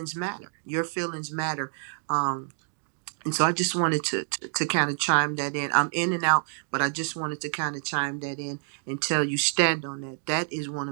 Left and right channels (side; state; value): left; silent; digital silence